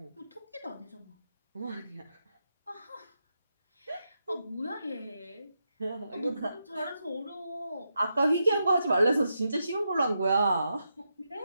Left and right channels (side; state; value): both; inverted; correlation -0.85